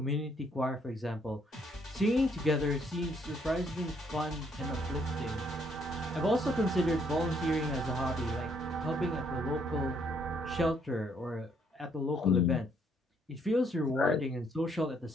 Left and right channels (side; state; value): both; normal; correlation 0.68